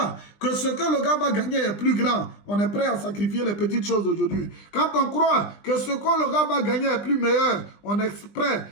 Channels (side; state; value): right; late; 20 ms